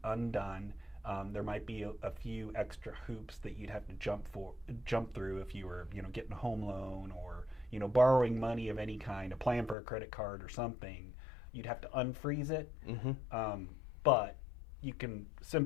undone. There might be a few extra hoops that you'd have to jump through if you were getting a home loan, or borrowing money of any kind, applying for a credit card or something. You'd have to unfreeze it, but you can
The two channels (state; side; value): drops out; right; at 9.8 s